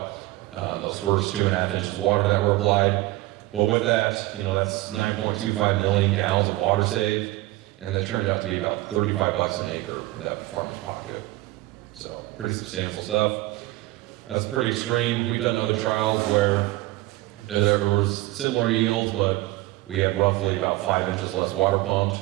Those first 2.5 inches of water that were applied. But with that, that's 9.25 million gallons of water saved, and that turned out to be about $35 an acre in that farmer's pocket. So pretty substantial stuff. That's pretty extreme. We've done other trials where there was similar yields, but we have roughly about 5 inches less water pumped,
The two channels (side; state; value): left; quieter; 18.4 dB